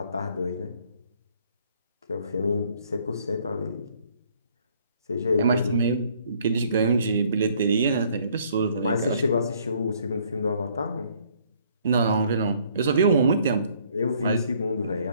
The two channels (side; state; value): both; inverted; correlation -0.62